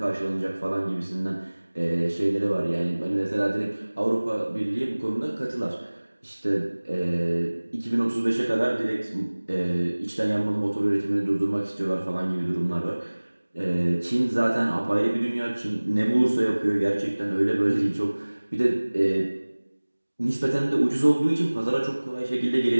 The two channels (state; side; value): inverted; both; correlation -1.00